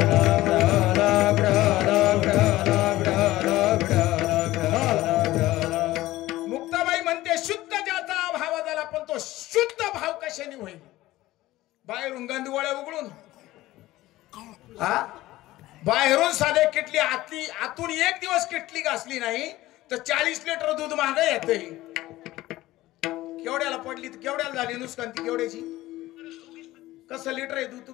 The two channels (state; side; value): quieter; right; 16.9 dB